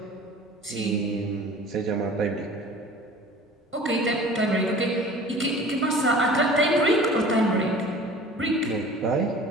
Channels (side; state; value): both; normal; correlation 0.44